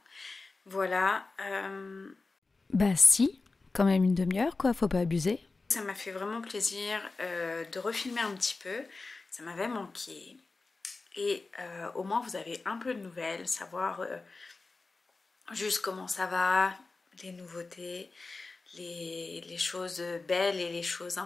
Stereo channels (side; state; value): right; quieter; 3.7 dB